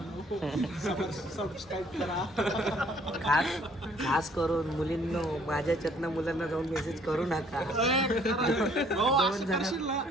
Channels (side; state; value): both; normal; correlation 0.60